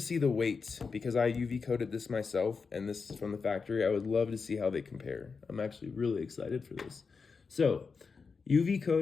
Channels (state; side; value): quieter; right; 5.0 dB